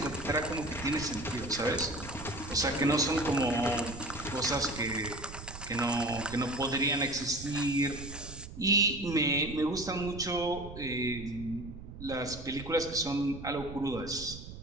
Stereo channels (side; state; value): right; noise; rumble, 12 dB below the sound